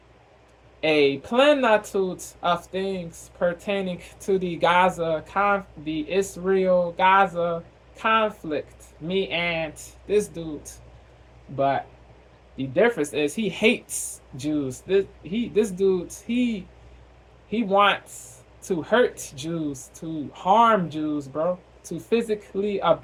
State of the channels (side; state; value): both; identical; correlation 1.00